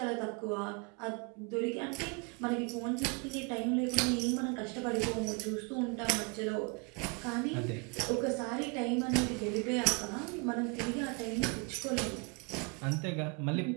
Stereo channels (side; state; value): left; quieter; 31.0 dB